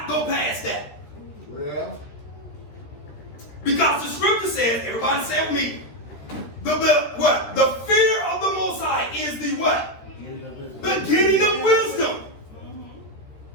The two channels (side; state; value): right; late; 13 ms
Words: go past that. well, Because the scripture says, everybody say with me, what? The fear of the Most High is the what? Beginning of wisdom.